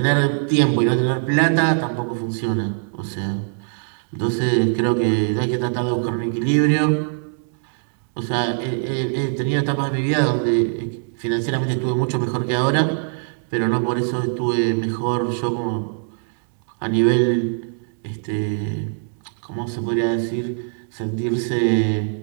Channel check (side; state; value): left; silent; 64 dB below the other